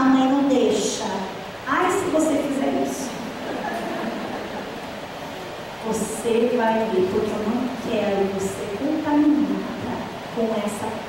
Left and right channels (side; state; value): both; identical; correlation 1.00